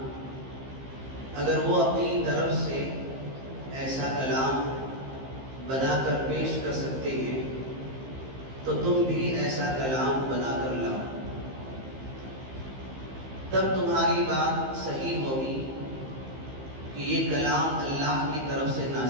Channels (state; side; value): late; left; 15 ms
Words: اگر وہ اپنی طرف سے ایسا کلام بنا کر پیش کر سکتے ہیں تو تم بھی ایسا کلام بنا کر لاؤ، تب تمہاری بات صحیح ہوگی کہ یہ کلام اللہ کی طرف سے